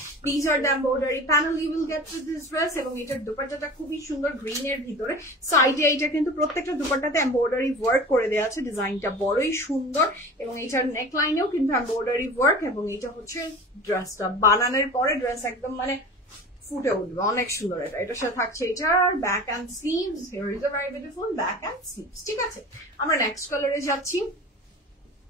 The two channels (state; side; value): normal; both; correlation 0.36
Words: This are the embroidery panel you will get with this dress. এবং এটার দুপাট্টাটা খুবই সুন্দর গ্রিন এর ভিতরে, সাইডে এটা কিন্তু প্রত্যেকটা দুপাট্টাতে এমব্রয়ডারি ওয়ার্ক করে দেওয়া আছে। ডিজাইনটা বড়ই সুন্দর এবং এটার নেকলাইনেও কিন্তু এমব্রয়ডারি ওয়ার্ক। এবং এটা হচ্ছে ড্রেসটা বানানোর পরে ড্রেস একদম মানে ফুটে উঠবে, অনেক সুন্দর। এটার সাথে থাকছে এটার back and sleeves. Here is a very beautiful back and sleeves. ঠিক আছে, আমরা নেক্সট কালারে যাচ্ছি।